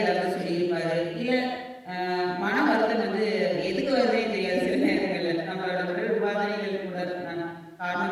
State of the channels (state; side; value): identical; both; correlation 1.00